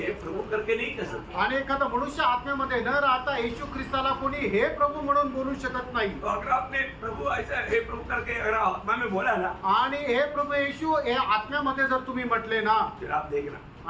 प्रभु करके नहीं कह सकता. आणि एखादा मनुष्य आत्म्यामध्ये न राहता येशू ख्रिस्ताला कोणी हे प्रभू म्हणून बोलू शकत नाही. तो अगर आपने प्रभु ऐसा हे प्रभु करके अगर आत्मा में बोला ना, आणि हे प्रभू येशू हे आत्म्यामध्ये जर तुम्ही म्हटले ना, फिर आप देखना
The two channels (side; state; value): both; identical; correlation 1.00